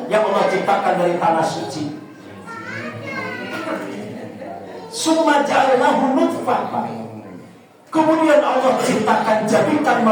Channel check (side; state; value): both; identical; correlation 1.00